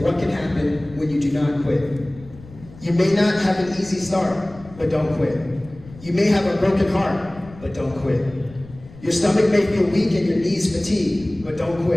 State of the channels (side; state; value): left; noise; rumble, 20 dB below the sound